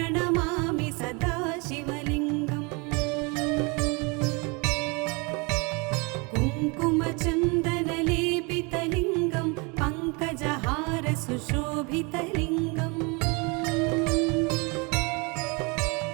सदा शिवलिङ्गम् कुङ्कुमचन्दनलेपितलिङ्गं पङ्कजहारसुशोभितलिङ्गम्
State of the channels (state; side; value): quieter; left; 29.9 dB